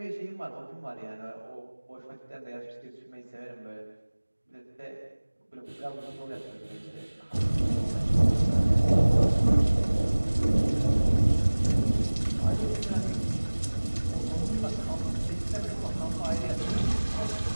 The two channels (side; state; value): both; inverted; correlation -1.00